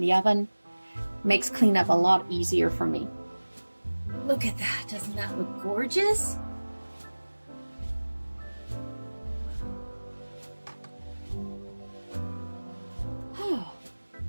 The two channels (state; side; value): inverted; both; correlation -1.00